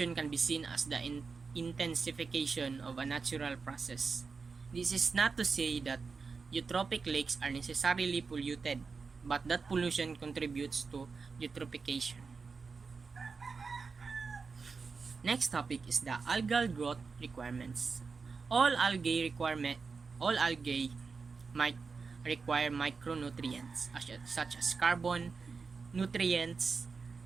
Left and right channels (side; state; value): left; quieter; 4.9 dB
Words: can be seen as the intensification of a natural process. This is not to say that eutrophic lakes are necessarily polluted, but that pollution contributes to eutrophication. Next topic is the algal growth requirements. All algae might require micronutrients such as carbon, nutrients,